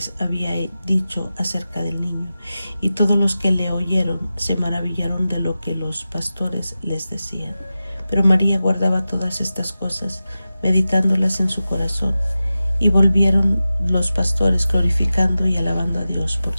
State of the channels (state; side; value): inverted; both; correlation -0.94